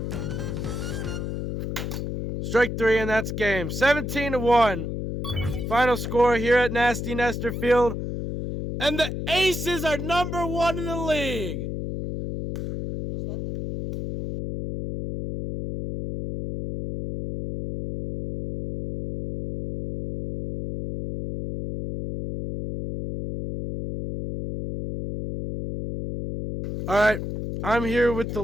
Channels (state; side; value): noise; left; hum, 4 dB below the sound